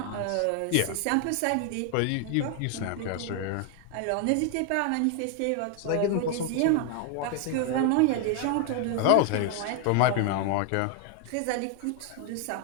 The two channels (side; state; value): both; different; correlation 0.01